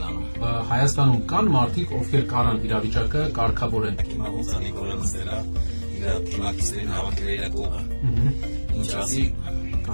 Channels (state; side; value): inverted; both; correlation -1.00